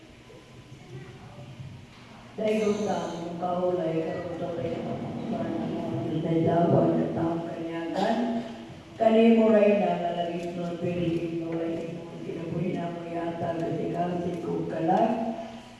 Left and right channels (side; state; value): both; identical; correlation 1.00